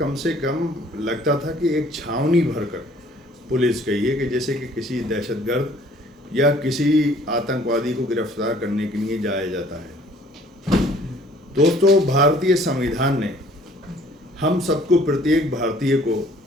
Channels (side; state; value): both; normal; correlation 0.56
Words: से कम लगता था कि एक छावनी भरकर पुलिस गई है कि जैसे कि किसी दहशतगर्द या किसी आतंकवादी को गिरफ्तार करने के लिए जाया जाता है। दोस्तों, भारतीय संविधान ने हम सबको, प्रत्येक भारतीय को